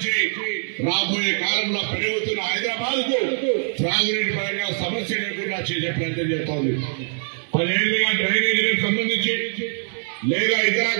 రాబోయే కాలంలో పెరుగుతున్న హైదరాబాద్ కు త్రాగునీటి పరంగా సమస్య లేకుండా చేసే ప్రయత్నం చేస్తోంది. 10 ఏళ్లుగా డ్రైనేజీలకు సంబంధించి లేదా ఇతర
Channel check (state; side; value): silent; left; 62 dB below the other